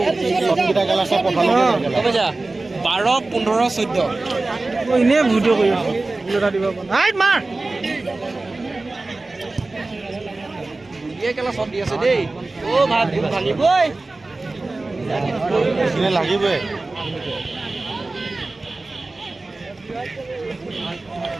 চবকেইটা গেলা চব পঠালে 12, 15, 14 এনেই ভিডিঅ' কৰি আছোঁ এটা দিব মাৰ কেলা শ্বট দি আছে দেই ভাত ভাঙিবই লাগিবই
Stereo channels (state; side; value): quieter; left; 3.2 dB